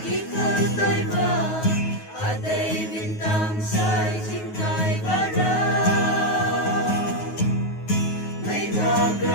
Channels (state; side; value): late; right; 9.4 ms